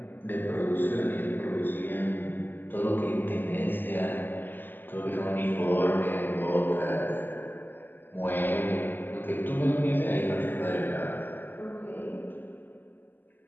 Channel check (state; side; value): late; right; 0.092 ms